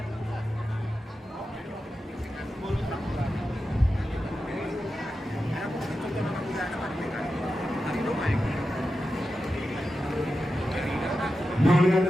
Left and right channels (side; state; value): both; normal; correlation 0.91